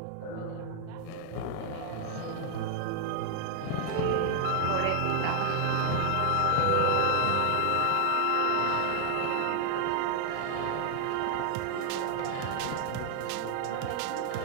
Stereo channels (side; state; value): both; different; correlation 0.00